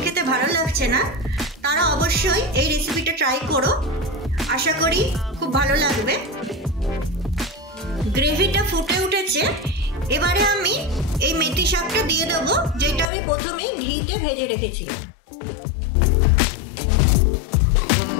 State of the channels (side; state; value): right; drops out; at 13.1 s